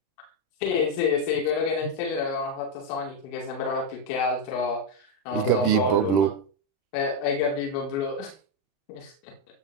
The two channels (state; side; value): late; right; 31 ms